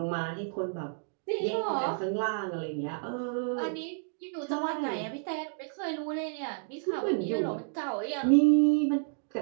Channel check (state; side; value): silent; left; digital silence